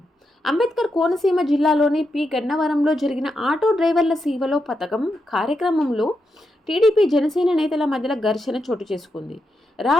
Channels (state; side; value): normal; both; correlation 0.84